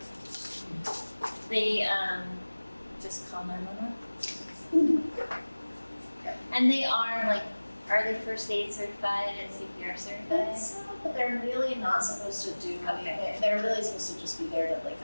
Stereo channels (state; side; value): inverted; both; correlation -1.00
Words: They just call 911. And they are they first aid certified and CPR certified? But they're really not supposed to do anything. They're really supposed to just be there to